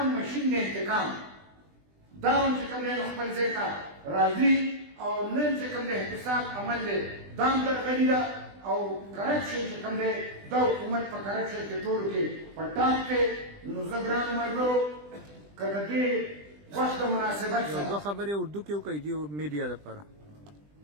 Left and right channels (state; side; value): late; left; 20 ms